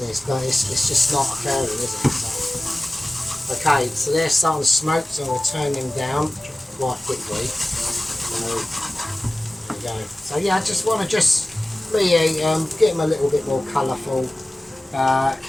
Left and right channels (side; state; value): both; normal; correlation 0.97